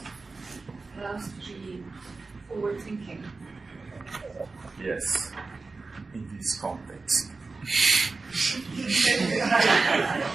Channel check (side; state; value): left; quieter; 3.9 dB